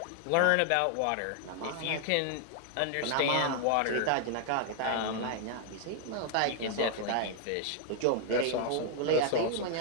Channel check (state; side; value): different; both; correlation 0.00